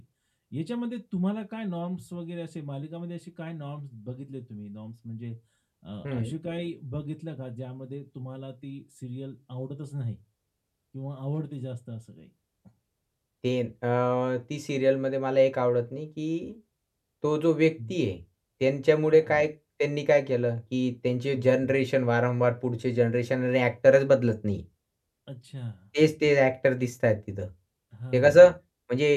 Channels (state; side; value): identical; both; correlation 1.00